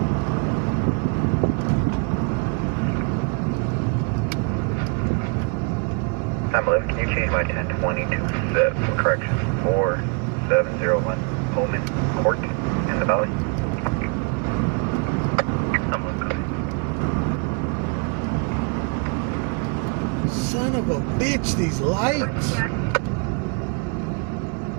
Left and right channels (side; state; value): left; quieter; 35.1 dB